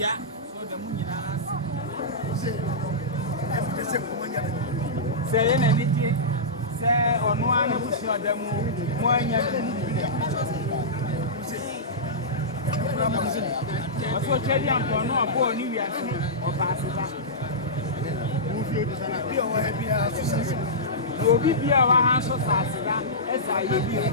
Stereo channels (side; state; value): both; normal; correlation -0.16